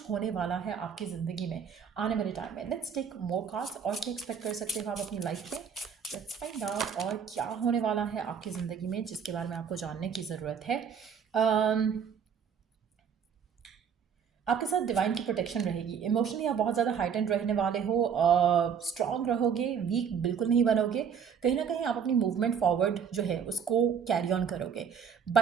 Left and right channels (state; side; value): quieter; left; 7.2 dB